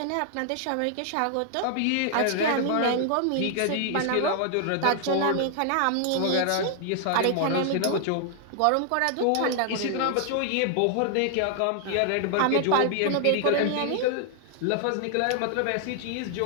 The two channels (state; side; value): different; both; correlation 0.00